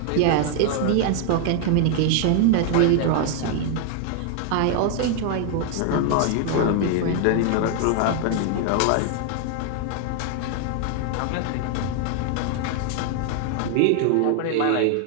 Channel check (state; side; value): different; both; correlation 0.00